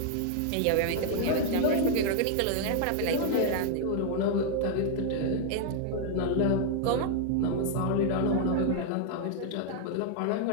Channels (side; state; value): both; different; correlation -0.01